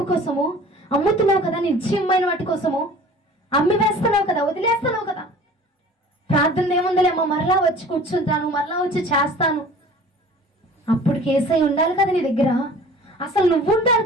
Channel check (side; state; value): both; normal; correlation 0.45